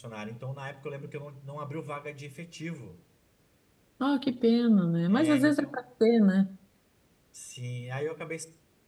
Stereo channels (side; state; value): both; identical; correlation 1.00